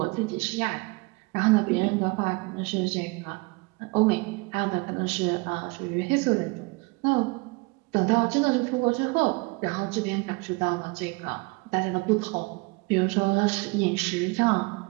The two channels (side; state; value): left; quieter; 26.7 dB